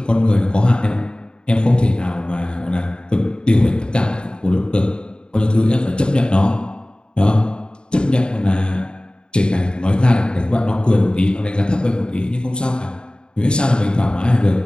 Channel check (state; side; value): late; right; 0.050 ms